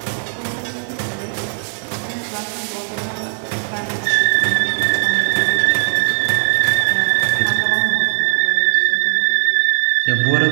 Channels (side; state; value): left; silent; 66 dB below the other